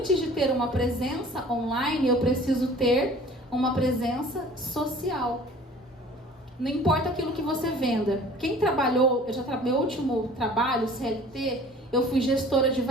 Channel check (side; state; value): both; normal; correlation 0.48